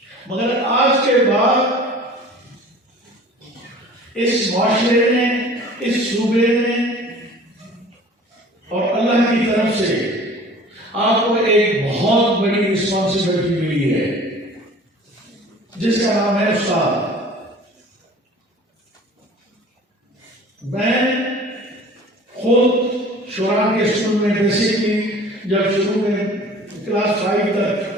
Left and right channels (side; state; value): both; normal; correlation 0.45